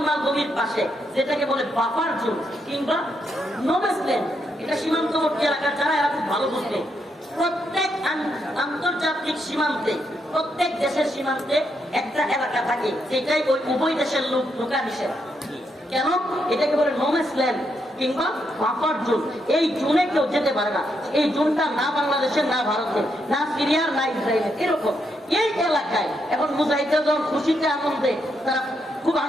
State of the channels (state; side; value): normal; both; correlation 0.79